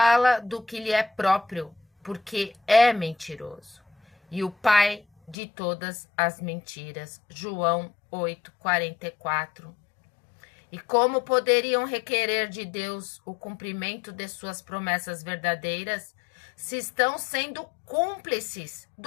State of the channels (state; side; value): drops out; right; at 5.4 s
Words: do que lhe é próprio, porque é mentiroso. E o pai de todas as mentiras. João 8:44. E como poderiam requerer de Deus o cumprimento de suas promessas verdadeiras, se estão sendo cúmplices